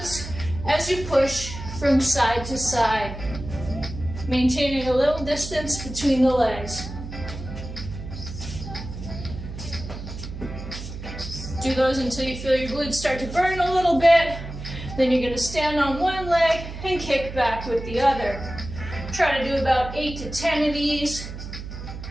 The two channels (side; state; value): right; noise; hum, 10 dB below the sound